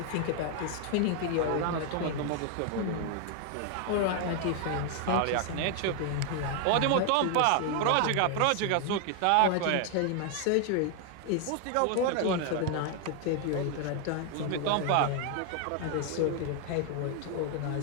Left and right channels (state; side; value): different; both; correlation 0.00